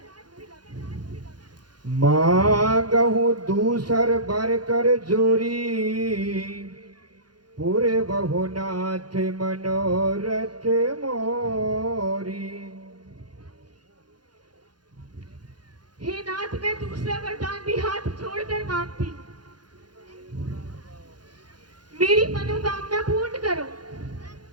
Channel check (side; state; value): left; late; 0.70 ms